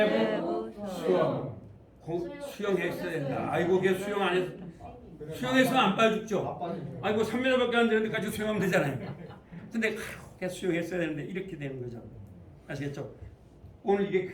수용. 수용했어야 된다. 아이고, 걔 수용 안 했어. 수용했으면 안 빠져 죽죠. 아이고, 3m밖에 안 되는데까지 수용하면 되잖아요. 근데 걔 수용했어야 되는데 이렇게 되는 거죠. 아시겠죠? 오늘 이게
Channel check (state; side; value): identical; both; correlation 1.00